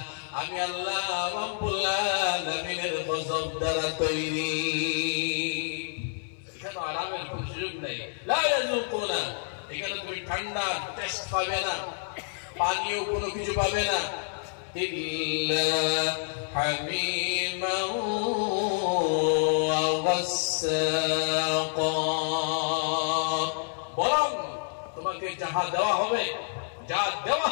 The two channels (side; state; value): right; silent; 59 dB below the other